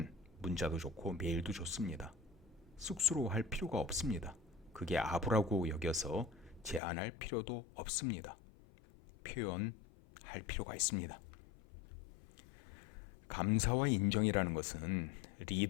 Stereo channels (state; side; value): drops out; right; at 6.8 s